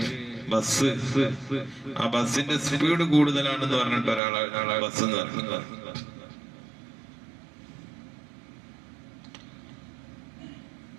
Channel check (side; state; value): left; drops out; at 4.2 s